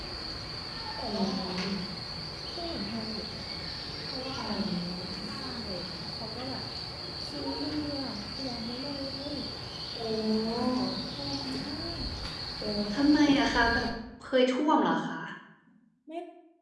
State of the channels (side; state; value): both; identical; correlation 1.00